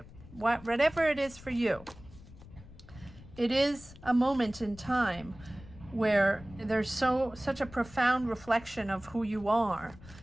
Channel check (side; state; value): left; noise; rumble, 19 dB below the sound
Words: Whatever it is for you. It is a moment in time where there's such a profound reflection of who you are